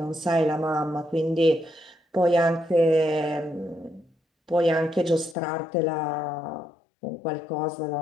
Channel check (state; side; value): drops out; right; at 5.4 s